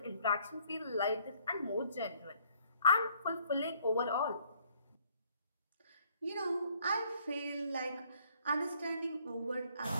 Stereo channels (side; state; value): both; inverted; correlation -0.63